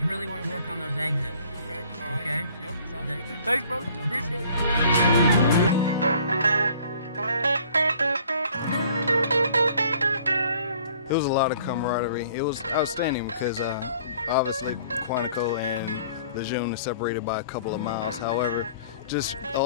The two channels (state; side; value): inverted; both; correlation -0.55